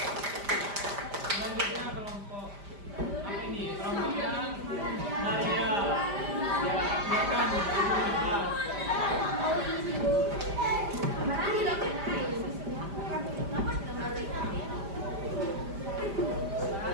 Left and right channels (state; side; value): late; left; 5.0 ms